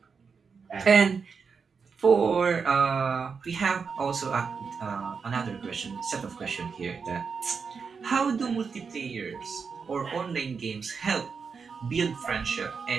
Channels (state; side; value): quieter; left; 5.5 dB